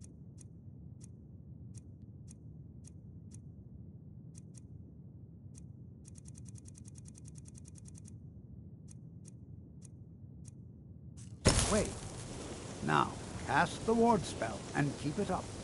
Wait. Now, cast the ward spell and keep it up.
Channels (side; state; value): both; identical; correlation 1.00